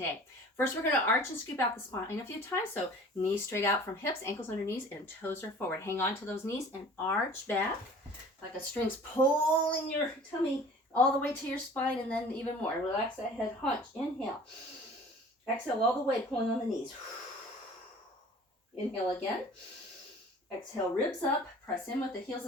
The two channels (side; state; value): both; normal; correlation 0.46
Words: First, we're going to arch and scoop out the spine a few times. So knees straight out from hips, ankles under knees, and toes are forward. Hang on to those knees and arch back like a string's pulling your tummy all the way to your spine, and then even more. Relax that head, hunch. Inhale. Exhale all the way, pulling on the knees. Inhale again. Exhale, ribs up, press in with the heels